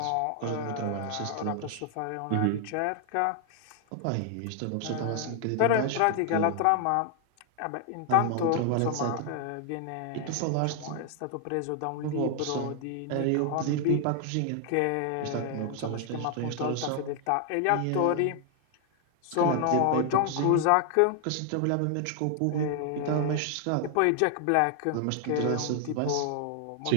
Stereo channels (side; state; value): both; different; correlation 0.00